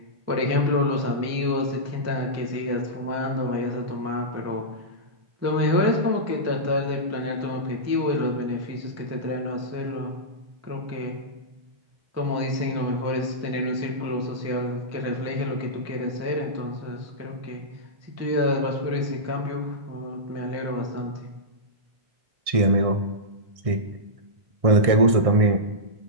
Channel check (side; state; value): left; late; 1.6 ms